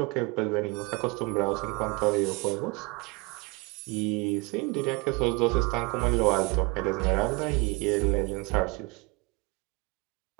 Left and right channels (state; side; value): quieter; left; 27.0 dB